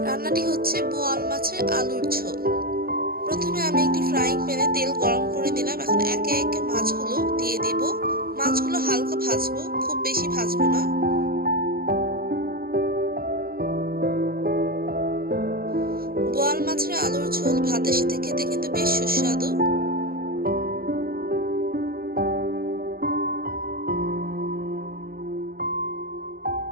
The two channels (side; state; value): left; late; 0.43 ms